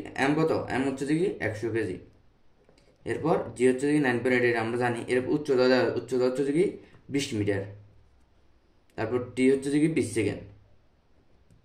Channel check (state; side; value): identical; both; correlation 1.00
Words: এম কত, এম হচ্ছে কি 100 কেজি। এরপর জি হচ্ছে কি 9.8 আমরা জানি। এর উচ্চতা হচ্ছে কি 20 মিটার। তারপর টি হচ্ছে কি 20 সেকেন্ড।